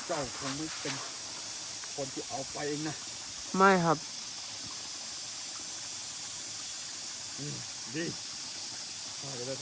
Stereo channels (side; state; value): both; identical; correlation 1.00